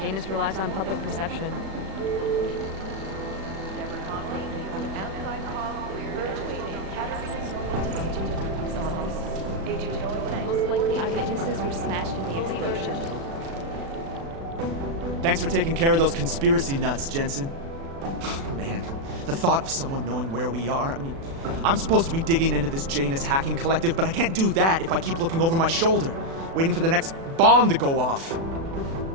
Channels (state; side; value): late; left; 36 ms